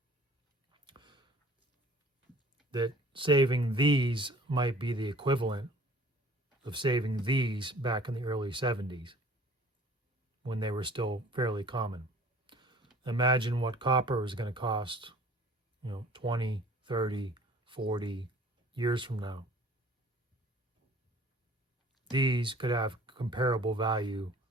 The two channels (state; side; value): normal; both; correlation 0.50